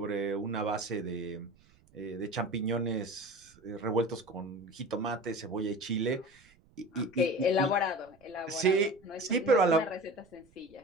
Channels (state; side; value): noise; right; rumble, 30 dB below the sound